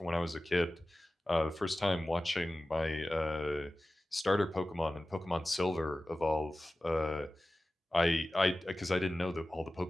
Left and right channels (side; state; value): both; normal; correlation 0.96